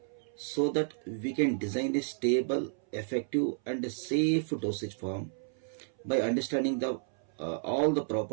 so that we can design a stable, effective and a safe dosage form by understanding the all the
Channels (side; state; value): left; silent; 57 dB below the other